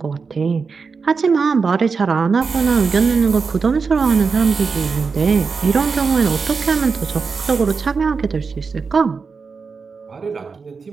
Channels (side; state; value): left; quieter; 5.0 dB